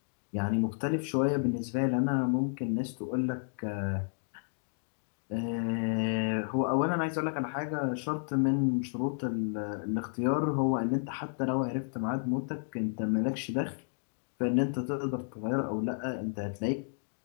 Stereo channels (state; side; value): silent; right; digital silence